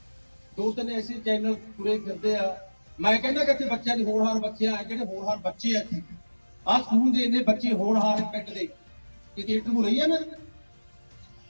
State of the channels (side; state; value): both; inverted; correlation -1.00